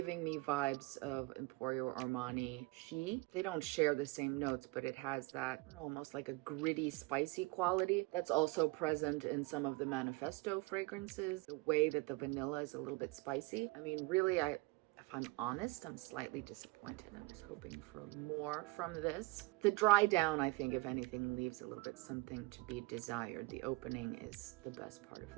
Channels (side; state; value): left; quieter; 23.0 dB